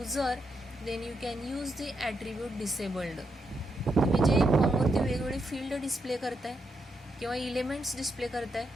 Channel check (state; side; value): normal; both; correlation 0.81